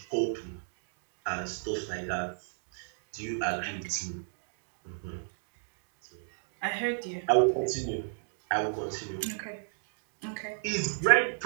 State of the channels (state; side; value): silent; left; digital silence